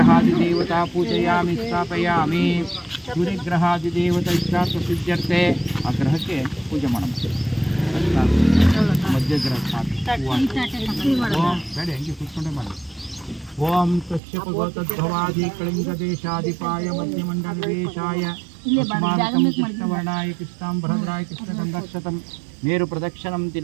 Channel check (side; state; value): left; drops out; at 14.2 s